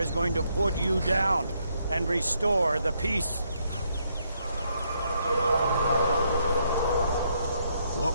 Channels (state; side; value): inverted; both; correlation -0.75